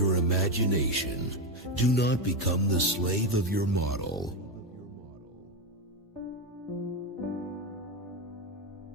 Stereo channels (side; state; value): both; normal; correlation 0.11